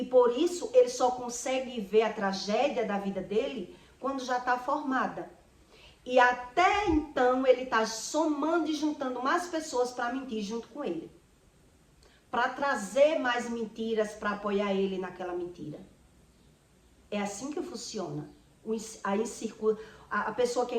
por isso ele só consegue ver a tragédia da vida dele quando já está formada. E até então ele está somando e juntando mais pessoas para mentir junto com ele. Para trazer mais mentiras para apoiar ele naquela mentira. É assim que funciona. A pessoa que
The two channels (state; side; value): identical; both; correlation 1.00